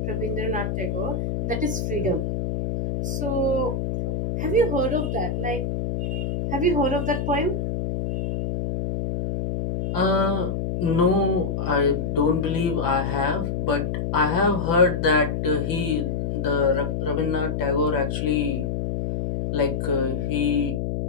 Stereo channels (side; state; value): left; noise; hum, 1 dB below the sound